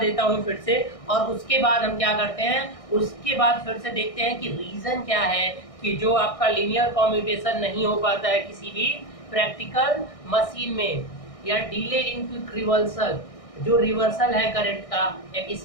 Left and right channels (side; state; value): right; late; 1.6 ms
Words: हूँ फिर से, और उसके बाद हम क्या करते हैं, उसके बाद फिर से देखते हैं कि रीज़न क्या है कि जो आपका लीनियर कम्यूटेशन नहीं हो पाता है किसी भी प्रैक्टिकल मशीन में, या डिले इन क्विक रिवर्सल। जो रिवर्सल है करंट का एक